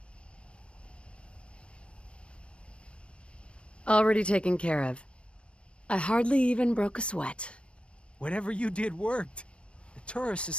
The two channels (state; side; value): late; right; 0.058 ms